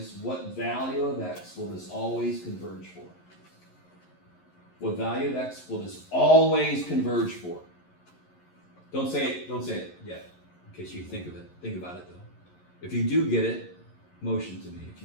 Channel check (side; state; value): right; late; 11 ms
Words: What value of x will this always converge for? What value of x will this always converge for? Don't say it yet, in case you think of it. Think about it though. If you do get it, motion to me if